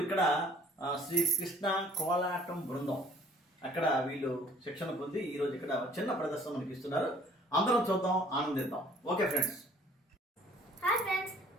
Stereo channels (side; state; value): both; normal; correlation 0.55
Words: ఇక్కడ శ్రీ కృష్ణ కోలాటం బృందం అక్కడ వీళ్ళు శిక్షణ పొంది ఈరోజు ఇక్కడ చిన్న ప్రదర్శన మనకి ఇస్తున్నారు. అందరం చూద్దాం, ఆనందిద్దాం. Okay friends. హాయ్ ఫ్రెండ్స్,